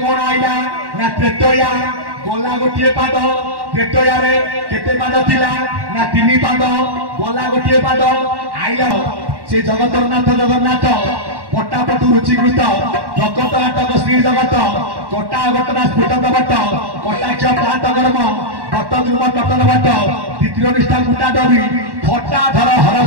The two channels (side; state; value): left; late; 1.1 ms